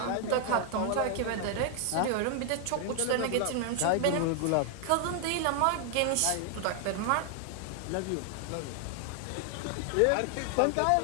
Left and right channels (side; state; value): both; different; correlation 0.00